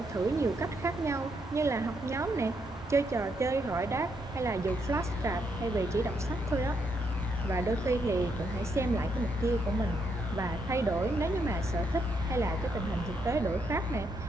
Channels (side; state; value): both; normal; correlation 0.77